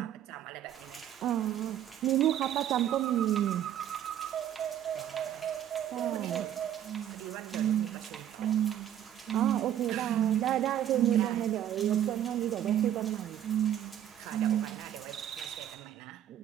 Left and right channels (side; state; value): left; quieter; 10.9 dB